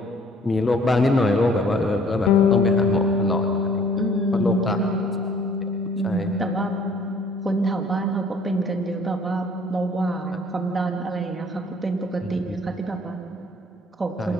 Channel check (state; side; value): normal; both; correlation 0.56